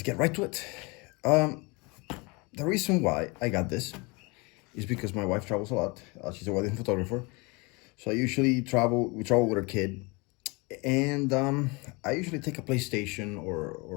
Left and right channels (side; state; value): right; quieter; 27.7 dB